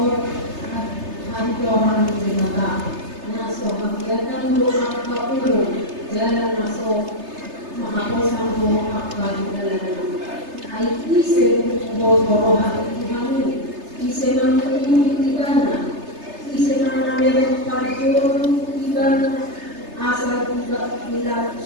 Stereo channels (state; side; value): late; left; 3.3 ms